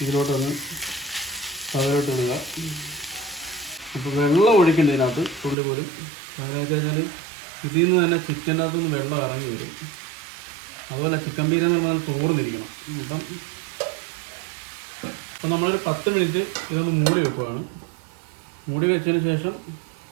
ഇതിലോട്ടൊന്ന് തവയിലോട്ട് ഇടുക. അപ്പോൾ വെള്ളം ഒഴിക്കേണ്ടതിനകത്ത് തുള്ളി പോലും. അതെന്ന് വെച്ച് കഴിഞ്ഞാൽ ഇതിൽ നിന്ന് തന്നെ ചിക്കനകത്തുനിന്ന് വെള്ളം ഇറങ്ങി വരും. അതുപോലെ ചിക്കൻ പീര എന്ന് പറഞ്ഞാൽ തോർന്നിരിക്കണം. അപ്പം നമ്മളൊരു 10 മിനിറ്റ് ഇതൊന്ന് മൂടി വെക്കുവാണ്. മൂടി വെച്ചതിന് ശേഷം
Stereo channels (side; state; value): left; drops out; at 5.6 s